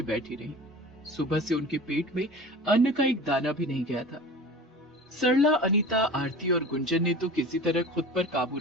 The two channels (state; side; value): normal; both; correlation 0.37